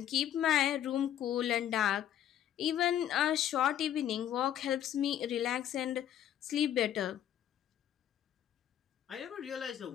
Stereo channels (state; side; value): quieter; right; 10.9 dB